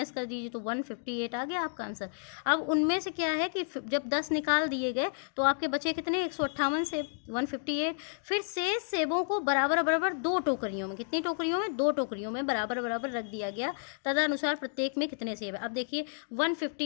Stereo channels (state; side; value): silent; right; digital silence